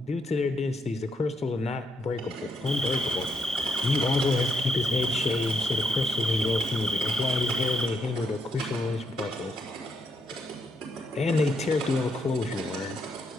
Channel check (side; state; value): both; normal; correlation 0.77